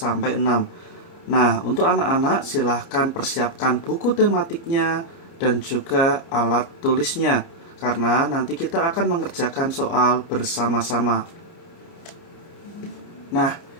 Nah, untuk anak-anak silahkan persiapkan buku tematiknya dan juga alat tulisnya, karena nanti kita akan mengerjakan soal bersama-sama. Nah,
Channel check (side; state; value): right; late; 30 ms